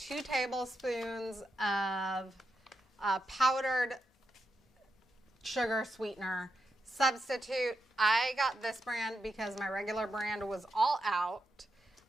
tablespoons of powdered sugar sweetener substitute. I got this brand because my regular brand was all out.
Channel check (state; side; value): normal; both; correlation 0.86